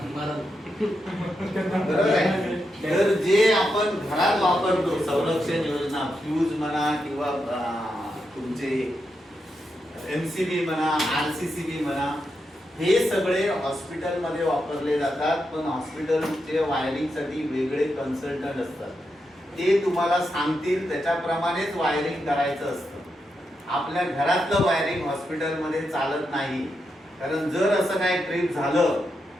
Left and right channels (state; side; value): normal; both; correlation 0.85